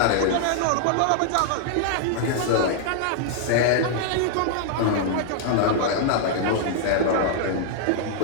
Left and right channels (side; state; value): both; different; correlation -0.01